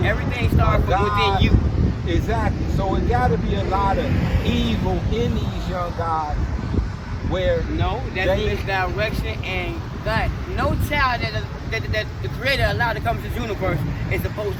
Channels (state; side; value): identical; both; correlation 1.00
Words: day, Everything starts from within you. Exactly. So it got to be a lot of evil in these young guys where No, that's they, misdirection, and God, no child that the Creator allowed to come to this universe is supposed